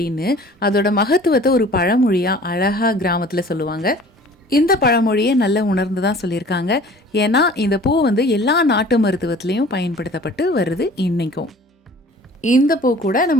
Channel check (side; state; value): both; normal; correlation 0.48